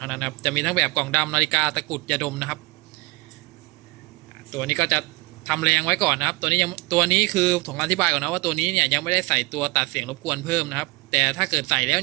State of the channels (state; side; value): quieter; left; 23.9 dB